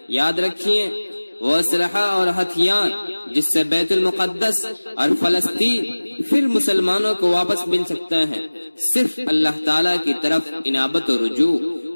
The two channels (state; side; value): inverted; both; correlation -1.00